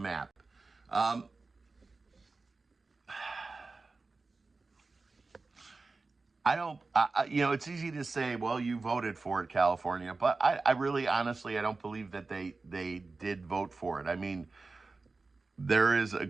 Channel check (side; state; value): left; quieter; 3.8 dB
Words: It's easy to say, well, you voted for it, California, but I really, honestly, I don't believe that they did vote for it. I mean, there is a